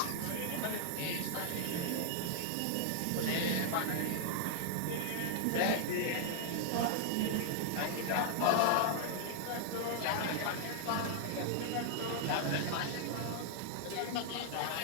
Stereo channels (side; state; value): both; different; correlation 0.00